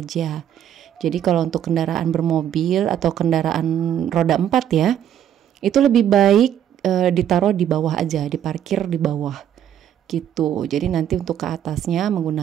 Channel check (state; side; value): quieter; left; 10.1 dB